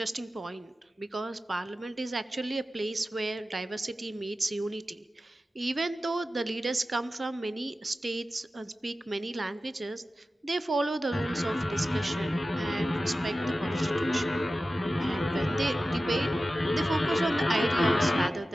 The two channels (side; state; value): both; normal; correlation 0.94